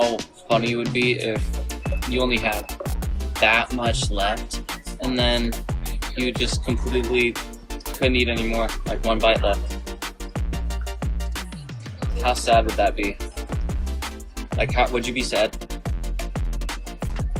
funny it would be if you only had that much left, and then you just completely couldn't eat anymore, like one bite left. How sad would that be? Like, how would you be sad?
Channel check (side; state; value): both; identical; correlation 1.00